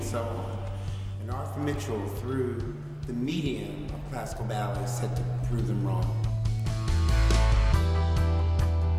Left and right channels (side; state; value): both; identical; correlation 1.00